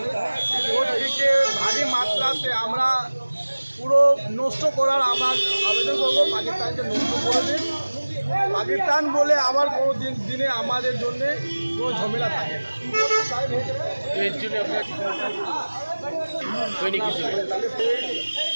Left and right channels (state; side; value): inverted; both; correlation -1.00